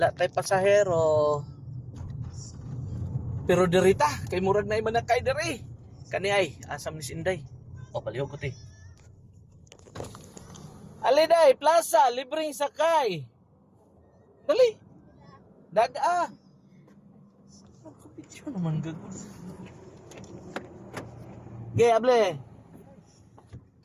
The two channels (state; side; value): identical; both; correlation 1.00